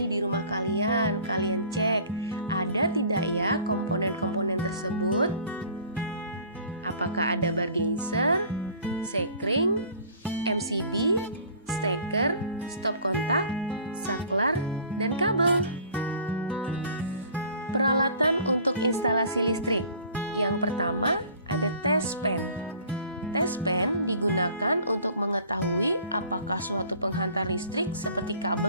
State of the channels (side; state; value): both; inverted; correlation -0.49